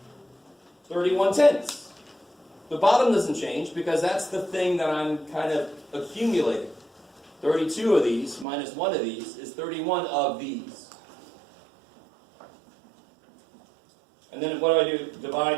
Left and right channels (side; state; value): left; drops out; at 8.5 s